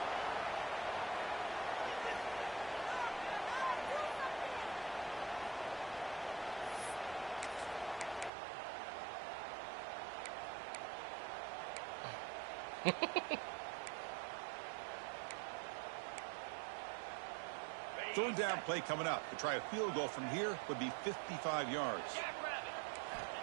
Third down play coming up. To try a field goal from here would be 55 yards.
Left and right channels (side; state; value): left; drops out; at 8.3 s